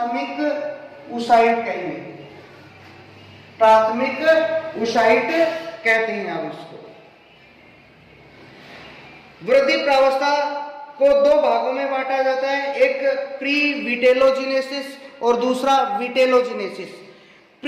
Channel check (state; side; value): identical; both; correlation 1.00